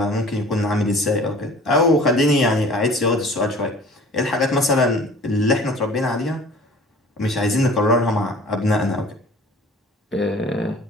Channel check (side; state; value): both; normal; correlation 0.47